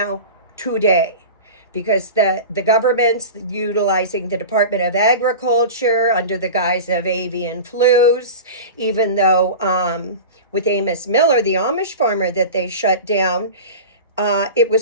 today, because the government's utilizing the Department of Agriculture under the guise of avian flus, even though with Amos Miller, the Amish farmer that they shut down, it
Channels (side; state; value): both; inverted; correlation -0.32